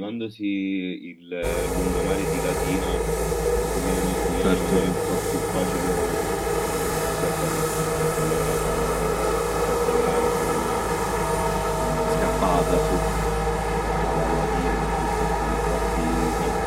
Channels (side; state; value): both; identical; correlation 1.00